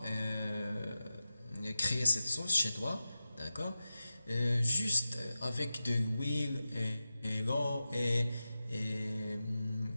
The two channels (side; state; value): both; inverted; correlation -0.93